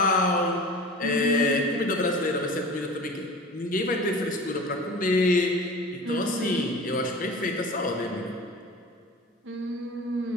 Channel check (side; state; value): both; normal; correlation 0.37